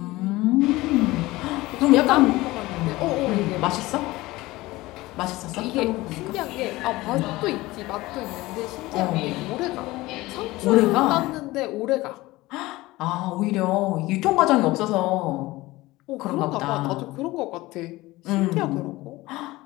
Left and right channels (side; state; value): right; quieter; 19.4 dB